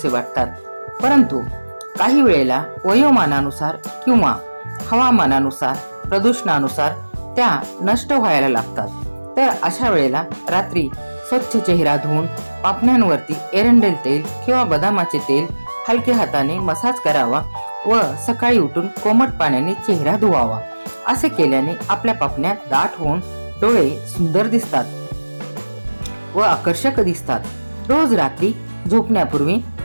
वाटतात, परंतु काही वेळेला वयोमानानुसार किंवा हवामानानुसार, प्रदूषणानुसार त्या नष्ट व्हायला लागतात. तर अशा वेळेला रात्री स्वच्छ चेहरा धुवून पापण्यांवरती एरंडेल तेल किंवा बदामाचे तेल हलक्या हाताने मसाज करावा व सकाळी उठून कोमट पाण्याने चेहरा धुवावा. असे केल्याने आपल्या पापण्या दाट होऊन डोळे सुंदर दिसतात व आकर्षक दिसतात. रोज रात्री झोपण्यापूर्वी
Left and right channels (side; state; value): both; inverted; correlation -1.00